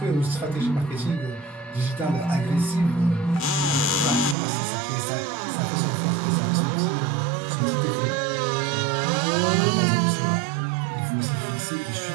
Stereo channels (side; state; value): left; drops out; at 4.4 s